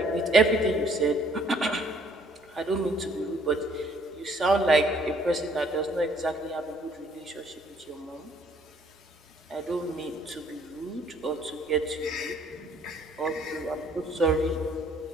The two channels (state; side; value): normal; both; correlation 0.62